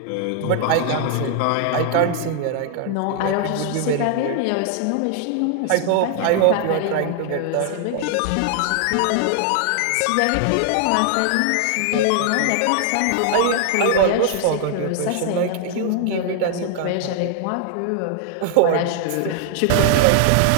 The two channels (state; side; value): different; both; correlation 0.00